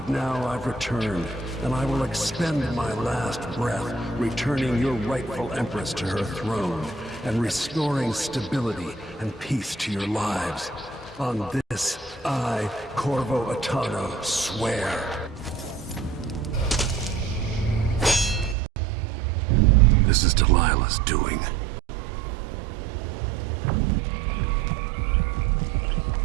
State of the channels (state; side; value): drops out; left; at 18.6 s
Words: now I've returned, and I will expend my last breath, returning your rightful Empress to her throne, and restoring stability and peace to your lives. On this, I, Corvo Atano, swear. This is Delilah's doing.